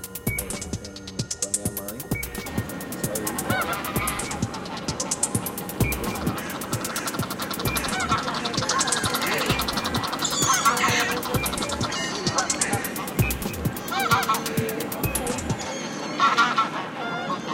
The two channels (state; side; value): identical; both; correlation 1.00